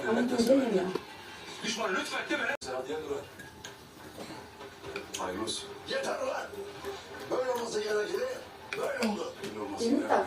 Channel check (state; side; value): identical; both; correlation 1.00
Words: devlet güzel desene. ya. Düşman lütfen de beni. Sen hadi dur. Hayırlı olsun. Yeter ulan. Böyle olması gerekli. Böyle oldu. Böyle olması Senin gerekli.